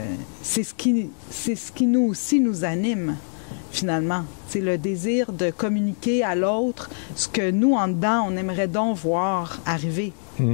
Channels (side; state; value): right; silent; digital silence